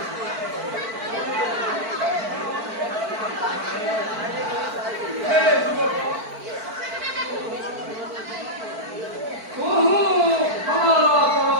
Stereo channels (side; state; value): left; late; 4.5 ms